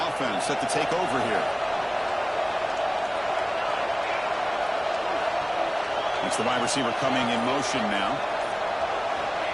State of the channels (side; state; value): both; identical; correlation 1.00